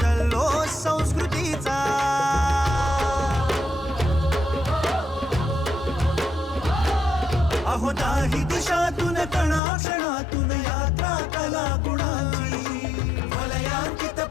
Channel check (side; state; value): right; drops out; at 9.6 s